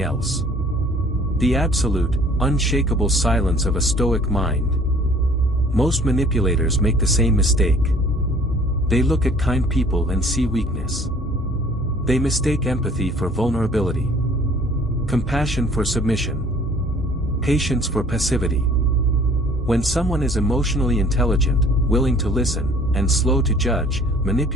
else. The absolute, unshakable silence of a Stoic mind. Most manipulators make the same mistake. They look at kind people and see weakness. They mistake empathy for vulnerability, compassion for submission, patience for passivity. When someone is emotionally intelligent, willing to listen, and slow to judge,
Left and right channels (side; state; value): both; normal; correlation 0.54